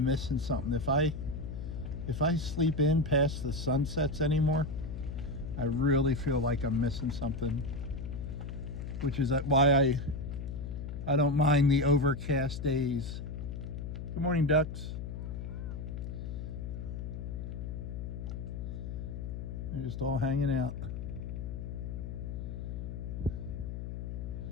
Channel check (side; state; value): left; noise; hum, 6 dB below the sound